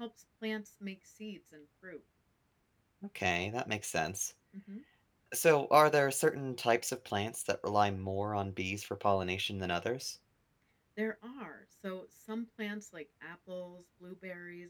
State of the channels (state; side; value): identical; both; correlation 1.00